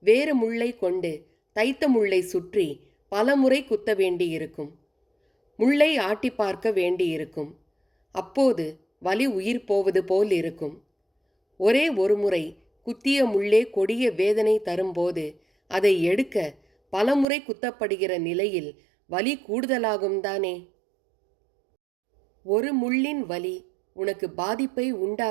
வேறு முள்ளை கொண்டு தைத்த முள்ளை சுற்றி பலமுறை குத்த வேண்டியிருக்கும். முள்ளை ஆட்டி பார்க்க வேண்டியிருக்கும். அப்போது வலி உயிர் போவது போல் இருக்கும். ஒரே ஒரு முறை குத்திய முள்ளே கொடிய வேதனை தரும்போது அதை எடுக்க பலமுறை குத்தப்படுகிற நிலையில் வலி கூடுதலாகும் தானே. ஒரு முள்ளின் வலி உனக்கு பாதிப்பை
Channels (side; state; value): left; drops out; at 17.2 s